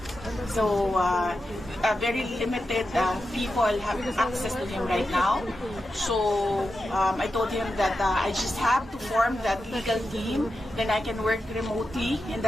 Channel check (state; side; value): normal; both; correlation 0.89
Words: So very limited people have access to him right now. So I told him that I just have to form that legal team. Then I can work remotely in